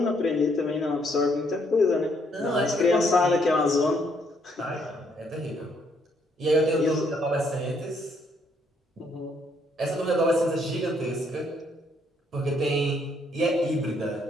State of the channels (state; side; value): normal; both; correlation 0.70